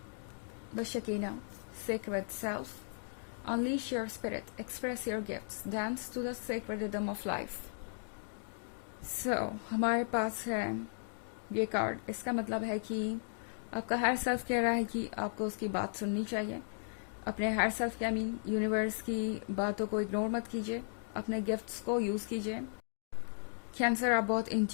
The Shekinah, sacred self, unleash your spirit, express your gifts, dance to the sacred rhythm of life. So, हमारे पास है ये कार्ड। इसका मतलब है कि आपका हायर सेल्फ कह रहा है कि आपको उसकी बात सुननी चाहिए। अपने हायर सेल्फ के यूनिवर्स की बातों को इग्नोर मत कीजिए, अपने गिफ्ट्स को यूज़ कीजिए कैंसर, आप बहुत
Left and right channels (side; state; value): right; silent; digital silence